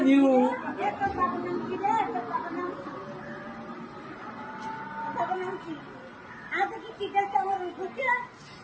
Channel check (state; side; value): identical; both; correlation 1.00